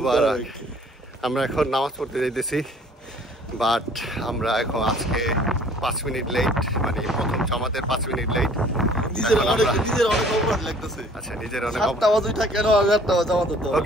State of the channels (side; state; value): both; normal; correlation 0.54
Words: আমরা এখন নামাজ পড়তে যাইতেছি, বাট আমরা এখন আজকে 5 মিনিট লেট, মানে প্রথম জামাতের 5 মিনিট লেট। নিজের অনেক অপরাধ লাগতেছে। আচ্ছা, নিজের অনেক